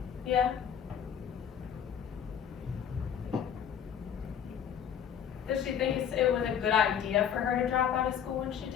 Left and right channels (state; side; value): quieter; right; 8.4 dB